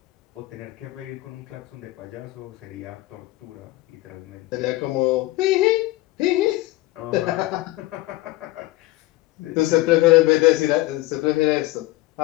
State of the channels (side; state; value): right; quieter; 18.3 dB